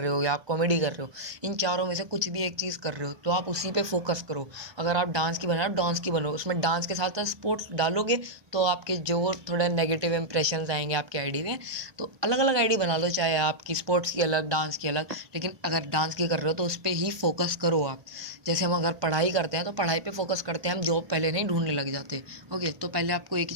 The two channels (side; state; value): left; late; 1.2 ms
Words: हो, या आप कॉमेडी कर रहे हो, इन चारों में से कुछ भी एक चीज़ कर रहे हो तो आप उसी पे फोकस करो। अगर आप डांस की बना रहे हो, डांस की बनो, उसमें डांस के साथ साथ स्पोर्ट्स डालोगे तो आपके जो थोड़े नेगेटिव इंप्रेशंस आएंगे आपके आईडी में। तो अलग अलग आईडी बना लो, चाहे आपकी स्पोर्ट्स की अलग, डांस की अलग, लेकिन अगर डांस की कर रहे हो तो उस पर ही फोकस करो आप। जैसे हम अगर पढ़ाई करते हैं तो पढ़ाई पे फोकस करते हैं, हम जॉब पहले नहीं ढूंढने लग जाते। ओके, तो पहले आपको एक ही